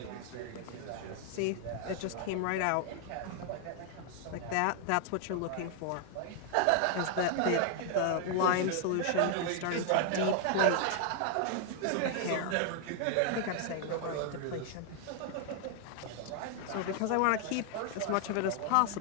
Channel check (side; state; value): both; different; correlation 0.00